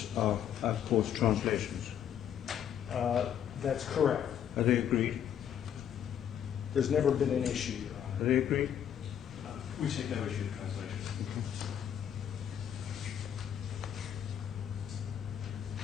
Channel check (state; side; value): quieter; right; 9.4 dB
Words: are, of course, translations. That's correct. Are they agreed? There's never been an issue, Your Honor. Are they agreed? We take no issue with translation.